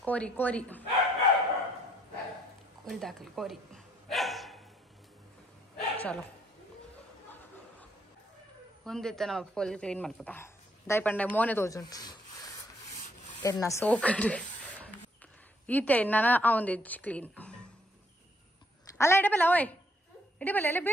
कोरी कोरी कोरी दाखल कोरी चलो ಒಂದಿತ್ತ ನಾವು ಫುಲ್ ಕ್ಲೀನ್ ಮಾಡ್ಬೋದಾ ದೈ ಪಂಡೆ ಮೋನೆ ತೋಜುಂಟು ಎನ್ನ ಸೋಕಡು ಈತೆ ನಾನು ಅವಂದಿಜ್ಜಿ ಕ್ಲೀನ್ ಅಲ್ಲ ಇಡಬಲ್ಲ ಓಯ್ ಇಡಬಲ್ಲ ಅಲ್ಲ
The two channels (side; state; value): both; normal; correlation 0.69